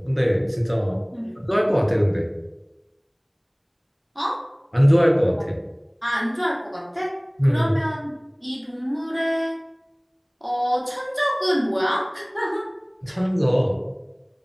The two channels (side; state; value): both; identical; correlation 1.00